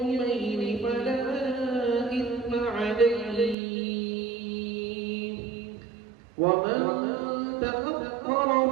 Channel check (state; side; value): drops out; left; at 3.6 s